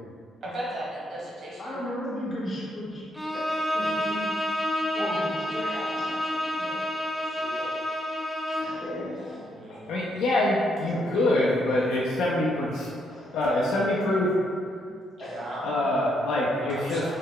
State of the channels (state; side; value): normal; both; correlation 0.76